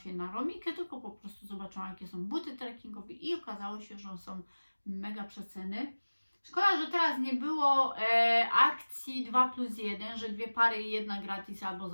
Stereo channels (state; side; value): inverted; both; correlation -1.00